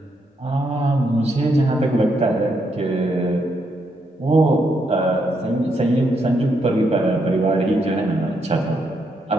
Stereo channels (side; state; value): both; normal; correlation 0.78